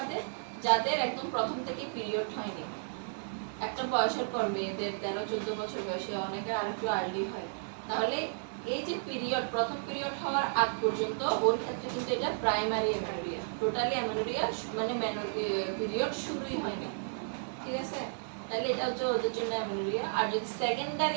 যাদের একদম প্রথম থেকে পিরিয়ড হয়নি। একটা বয়সের পর মেয়েদের 13-14 বছর বয়সে, অনেকের আরেকটু আর্লি হয়। তাহলে এই যে পিরিয়ড, প্রথম পিরিয়ড হওয়ার আগ পর্যন্ত ওর ক্ষেত্রে কিন্তু এটা প্রাইমারি অ্যামেনোরিয়া। টোটালি অ্যামেনোরিয়া মানে পিরিয়ড শুরুই হয়নি, ঠিক আছে? তাহলে এটা হচ্ছে ওদের জন্য অ্যামেনোরিয়া। আর যদি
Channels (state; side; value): silent; left; digital silence